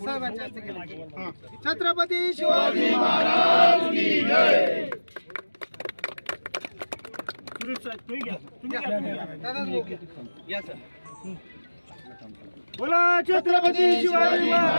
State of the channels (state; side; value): inverted; both; correlation -1.00